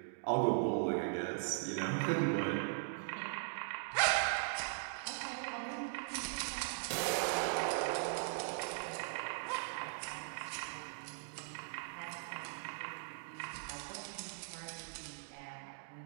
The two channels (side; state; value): left; silent; digital silence